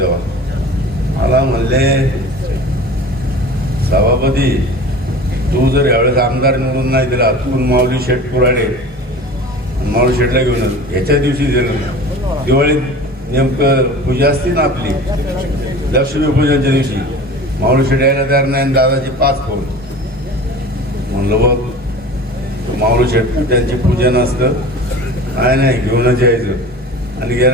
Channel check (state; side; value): normal; both; correlation 0.38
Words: मला म्हणले, सभापती तू जर यावेळेस आमदार निवडून नाही दिला, तू माऊली शेठ कुराडे माऊली शेठला घेऊन ह्याच्या दिवशी दिलं, दिवाळीत नेमकं पूजा असते ना आपली लक्ष्मीपूजनच्या दिवशी, माऊली शेठ यायला तयार नाही, दादाची 5 फोन. म्हणलं बघ माऊली शेठ त्यांची पूजन असतं, नाही घेऊनच यायचं. आणि